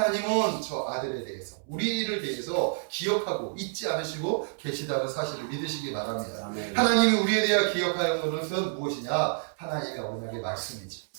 저 아들에 대해서 우리를 대해서 기억하고 잊지 않으시고 계시다는 사실을 믿으시기 바랍니다. 아멘. 하나님이 우리에 대해 기억하는 것은 무엇이냐? 하나님의 언약의 말씀이지.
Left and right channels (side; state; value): left; silent; 58 dB below the other